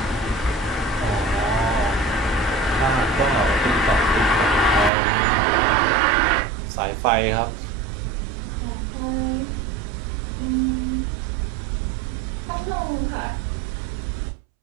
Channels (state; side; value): drops out; left; at 4.9 s